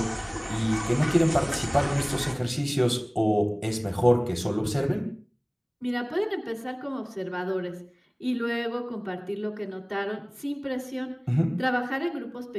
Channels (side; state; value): both; identical; correlation 1.00